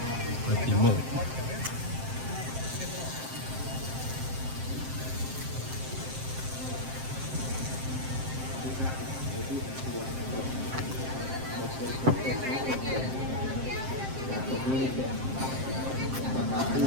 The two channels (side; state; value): left; late; 7.6 ms